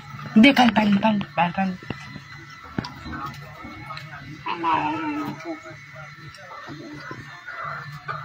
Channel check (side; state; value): both; identical; correlation 1.00